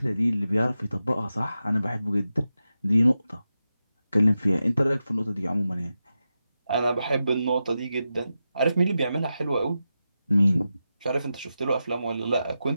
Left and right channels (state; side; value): inverted; both; correlation -0.90